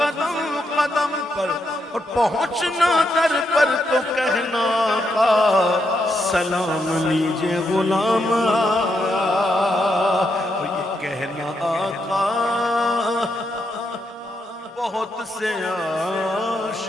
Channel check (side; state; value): both; normal; correlation 0.81